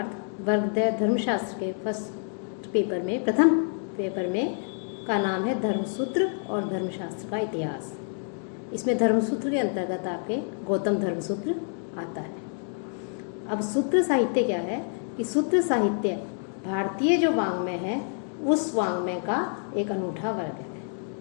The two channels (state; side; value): silent; right; 56 dB below the other